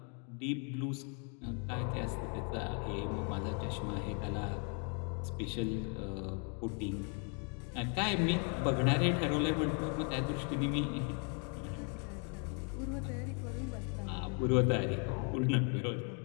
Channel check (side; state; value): right; quieter; 38.7 dB